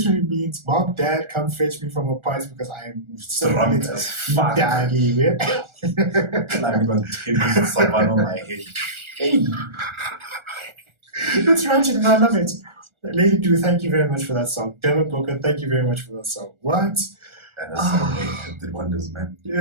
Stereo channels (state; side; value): late; left; 1.4 ms